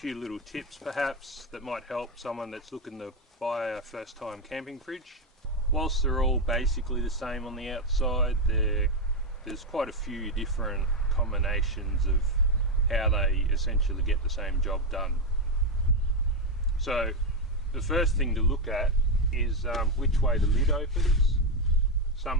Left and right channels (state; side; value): normal; both; correlation 0.07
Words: little tips perhaps that might help someone that's looking to buy a first time camping fridge. Whilst they're all basically the same on the outside, there's quite a few different combinations of how they essentially get the same job done. So the first thing to look at is which way the lid opens. Some